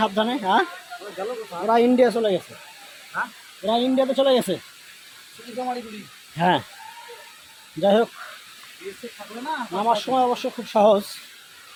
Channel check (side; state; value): both; identical; correlation 1.00